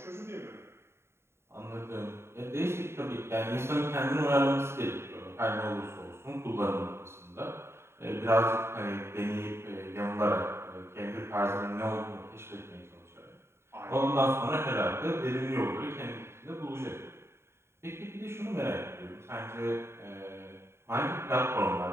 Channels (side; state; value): left; late; 0.12 ms